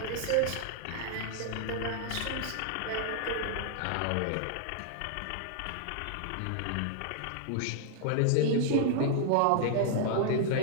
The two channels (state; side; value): different; both; correlation -0.01